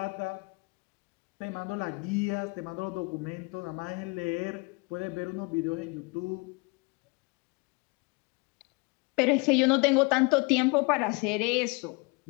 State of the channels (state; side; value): quieter; right; 29.5 dB